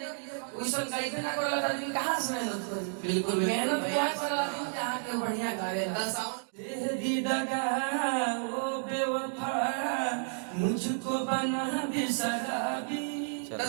के लिए। वैसा गाइबे ना कर लगा आदमी कहां से मेहनत करे? बिल्कुल मेहनत क्या कर आदमी जहां के बढ़िया गावेला। दे दी दगा ओ बेवफा मुझको बना दी शराबी।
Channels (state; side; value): silent; left; digital silence